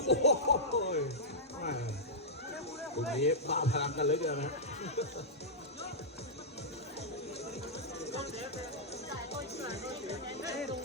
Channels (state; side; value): normal; both; correlation -0.11